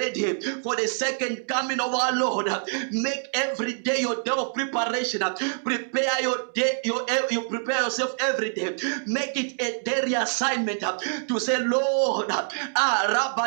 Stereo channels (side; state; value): left; silent; digital silence